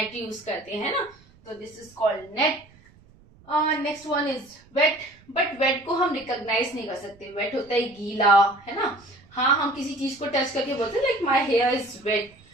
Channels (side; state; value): right; noise; rumble, 27 dB below the sound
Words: यूज करते हैं ना। तो this is called net. Next one is wet, but wet को हम रिकॉग्नाइज नहीं कर सकते। वेट होता है गीला, है ना। हाँ, हम किसी चीज को टच करके बोलते हैं, like my hair is wet,